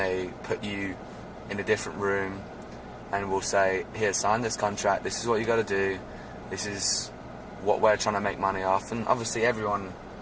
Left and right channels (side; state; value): both; identical; correlation 1.00